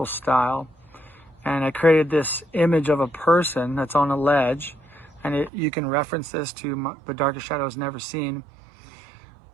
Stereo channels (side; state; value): left; drops out; at 5.5 s